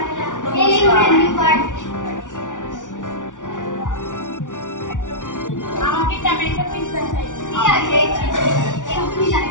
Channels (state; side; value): late; right; 0.87 ms